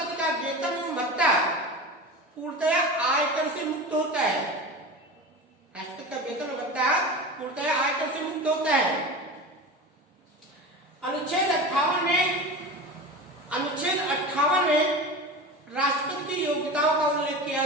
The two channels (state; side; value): normal; both; correlation 0.30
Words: का वेतन एवं भत्ता पूर्णतया आयकर से मुक्त होता है। राष्ट्रपति का वेतन और भत्ता कर से मुक्त होता है। अनुच्छेद 58 में राष्ट्रपति की योग्यताओं का उल्लेख किया